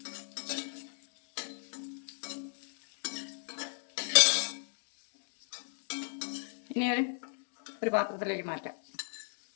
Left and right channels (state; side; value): silent; right; 54 dB below the other